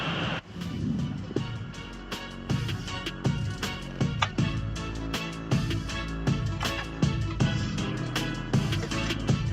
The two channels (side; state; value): both; identical; correlation 1.00